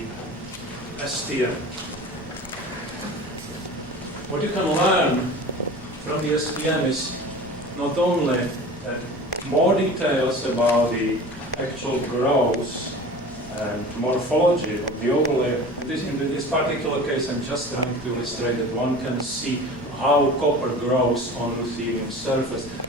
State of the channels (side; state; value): both; normal; correlation 0.38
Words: STM. What you can learn from the STM is not only more details about the actual growth and morphology of the overlay. In this particular case, I'm just trying to illustrate that one can see how copper grows on ruthenium surface,